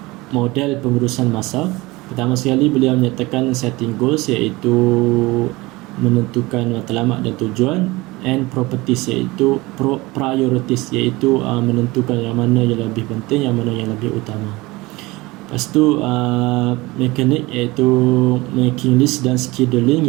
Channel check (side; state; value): left; quieter; 21.6 dB